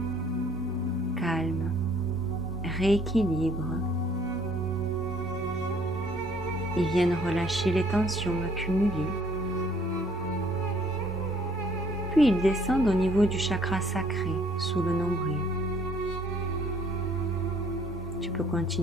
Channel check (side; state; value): both; normal; correlation 0.61